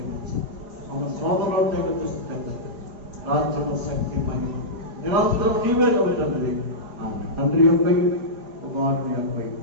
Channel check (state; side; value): late; left; 4.9 ms